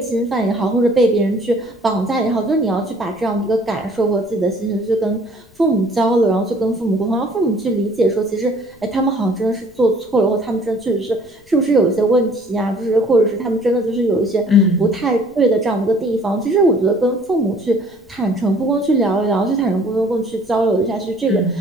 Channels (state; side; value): noise; left; rumble, 28 dB below the sound